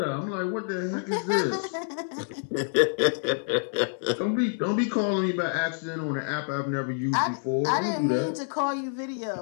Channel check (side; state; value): right; silent; digital silence